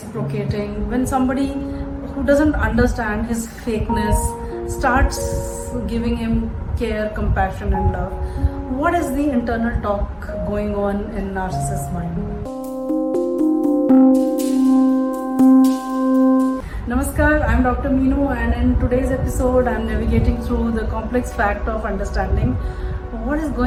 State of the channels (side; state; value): both; identical; correlation 1.00